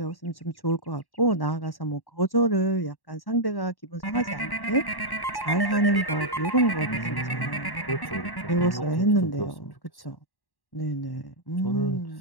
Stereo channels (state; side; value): late; right; 1.1 ms